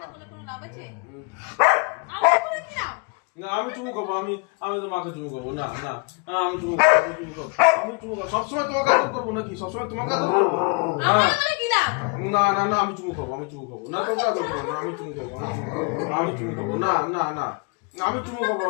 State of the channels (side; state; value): right; quieter; 33.8 dB